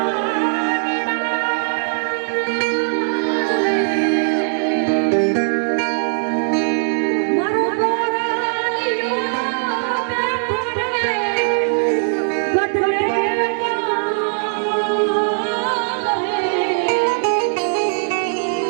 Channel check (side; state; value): left; silent; digital silence